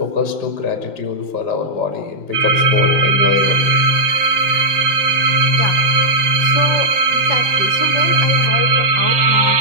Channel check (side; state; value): left; late; 5.7 ms